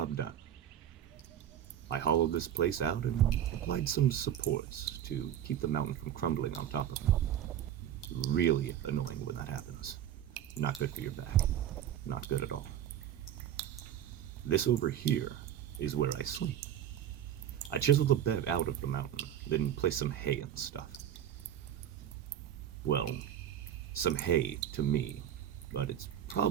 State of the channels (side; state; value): left; quieter; 10.5 dB